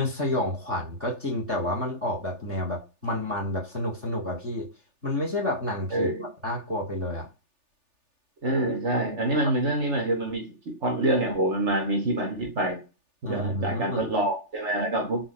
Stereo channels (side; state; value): left; late; 3.4 ms